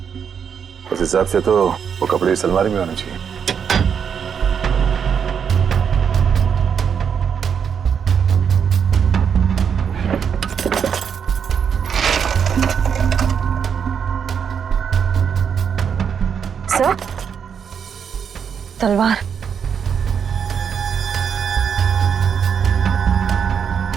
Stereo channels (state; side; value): quieter; left; 7.3 dB